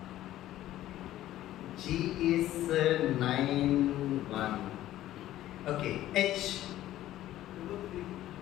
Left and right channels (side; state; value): right; quieter; 13.9 dB